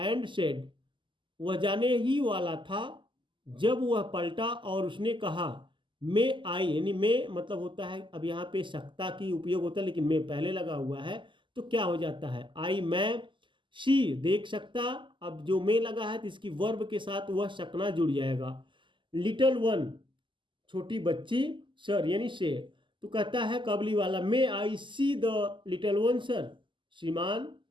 said, वह जाने ही वाला था जब वह पलटा और उसने कहा, मे आई यानी मे मतलब होता है, अब यहाँ पे सकता की उपयोग होता है लेकिन मे पहले लगा हुआ है तो क्या हो जाता है आई मैं, शी देख सकता, अब जो मे लगा है तो इसकी वर्ब के साथ वह सकना जुड़ जाएगा। लिटल वन छोटी बच्ची, सर यानी से, तो कहता है Kabuliwala, may I see the little one sir, श्रीमान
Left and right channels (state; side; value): late; left; 0.24 ms